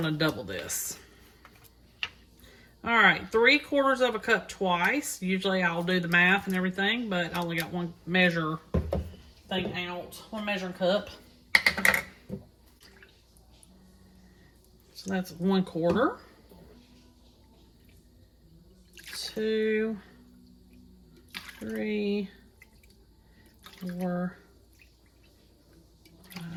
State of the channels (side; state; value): both; identical; correlation 1.00